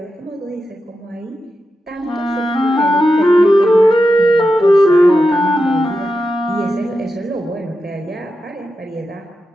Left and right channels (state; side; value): normal; both; correlation 0.89